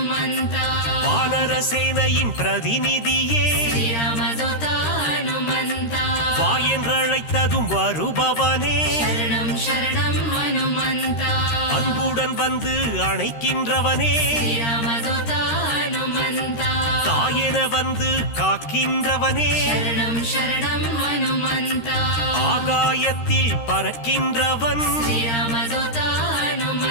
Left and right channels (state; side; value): late; right; 13 ms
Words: வானர சேனையின் பிரதிநிதியே ಶ್ರೀರಾಮದೂತ ಹನುಮಂತ வா என்றழைத்ததும் வருபவனே ಶರಣಂ ಶರಣಂ ಹನುಮಂತ அன்புடன் வந்து அணைக்கின்றவனே ಶ್ರೀರಾಮದೂತ ಹನುಮಂತ தாயென வந்து காக்கின்றவனே ಶರಣಂ ಶರಣಂ ಹನುಮಂತ ஆகாயத்தில் பறக்கின்றவன் ಶ್ರೀರಾಮದೂತ